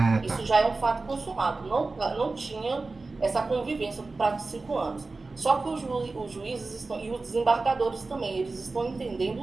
Isso já é um fato consumado. Não tinha essa convivência no prazo de 5 anos. Só que os juízes e os desembargadores também, eles estão entendendo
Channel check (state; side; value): quieter; left; 3.6 dB